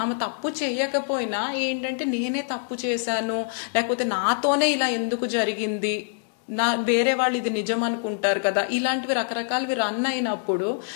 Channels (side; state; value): right; silent; 62 dB below the other